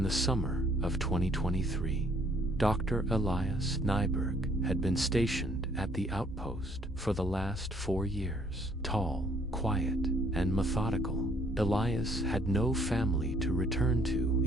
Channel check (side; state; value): both; normal; correlation 0.63